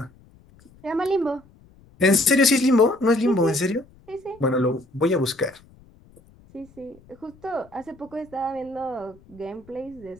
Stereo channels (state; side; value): noise; left; rumble, 27 dB below the sound